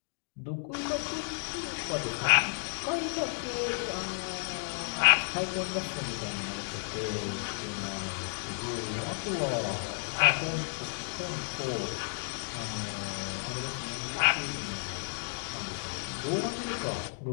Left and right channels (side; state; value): right; silent; digital silence